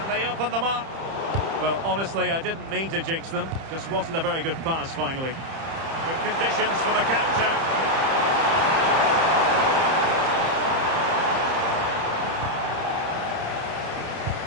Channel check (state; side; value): late; left; 30 ms